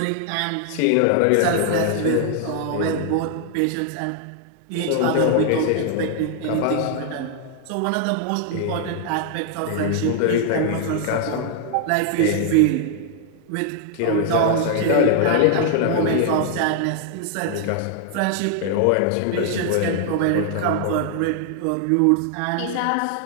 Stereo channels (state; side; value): different; both; correlation 0.00